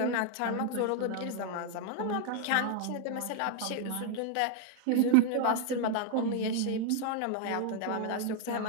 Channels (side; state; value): both; different; correlation 0.00